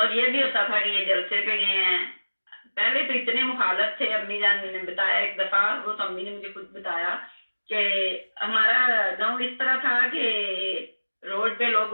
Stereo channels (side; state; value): both; inverted; correlation -1.00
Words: ये भी होता था कि ये जलसे पे गए हैं। पहले तो इतने मुखालफ थे। अम्मी जान ने बताया एक दफा, वो तो अम्मी ने मुझे खुद बताया कि हमारा गांव इस तरह था कि रोड पे लोग